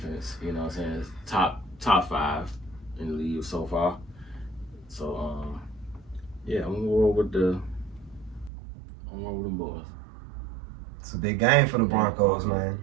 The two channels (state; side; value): drops out; left; at 8.5 s